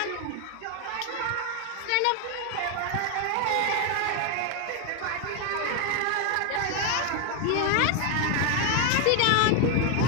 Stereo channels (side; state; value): both; different; correlation 0.01